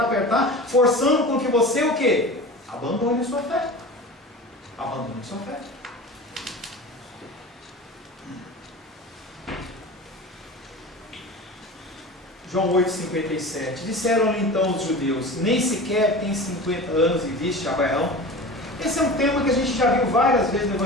forçando com que você o quê? Abandone a sua fé. Abandone a sua fé. João 8,57. Disseram-lhe então os judeus: nem sequer tem 50 anos e viste Abraão? Esse é um tema que a gente já viu várias vezes no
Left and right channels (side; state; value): both; normal; correlation 0.34